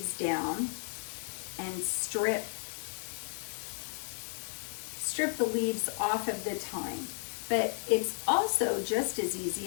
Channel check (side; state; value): right; silent; 56 dB below the other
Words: down and strip the leaves off of the thyme. But it's also just as easy,